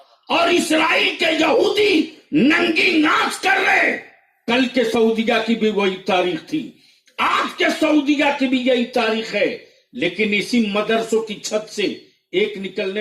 اور اسرائیل کے یہودی ننگی ناچ کر رہے۔ کل کے سعودیہ کی بھی وہی تاریخ تھی، آج کے سعودیہ کی بھی یہی تاریخ ہے، لیکن اسی مدرسوں کی چھت سے ایک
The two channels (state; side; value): identical; both; correlation 1.00